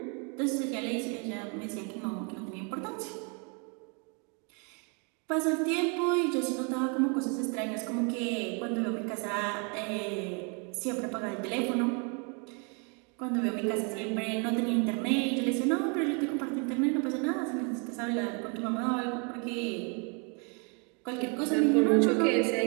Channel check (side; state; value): left; quieter; 35.4 dB